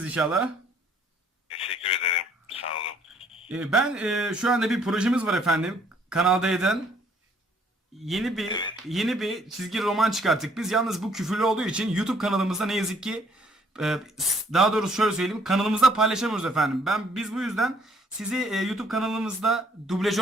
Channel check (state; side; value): normal; both; correlation 0.64